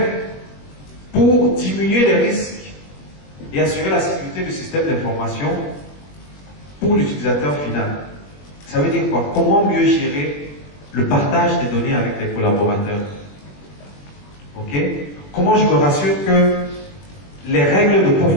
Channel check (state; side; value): late; right; 21 ms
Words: pour diminuer les risques et assurer la sécurité du système d'information pour l'utilisateur final? Ça veut dire quoi? Comment mieux gérer le partage des données avec les collaborateurs? Ok? Comment je me rassure que les règles de